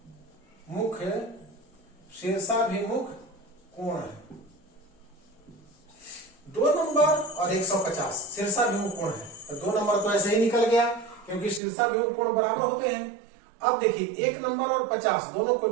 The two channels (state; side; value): drops out; left; at 11.6 s